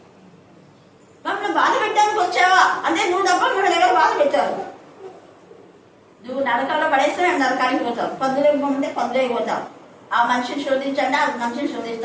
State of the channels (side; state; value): both; identical; correlation 1.00